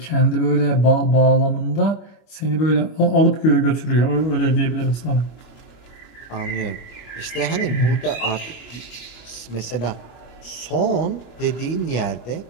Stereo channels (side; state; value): right; late; 25 ms